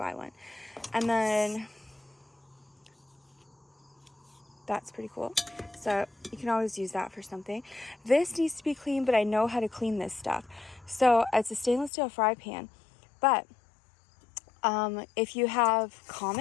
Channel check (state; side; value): drops out; right; at 11.9 s